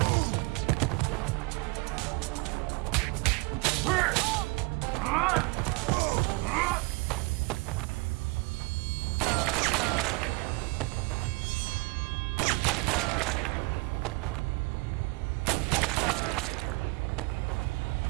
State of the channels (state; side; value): quieter; left; 26.5 dB